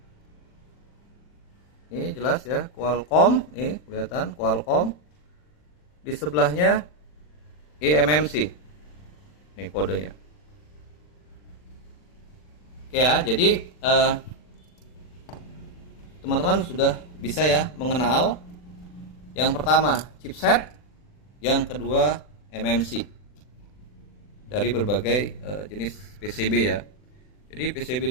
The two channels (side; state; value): right; late; 40 ms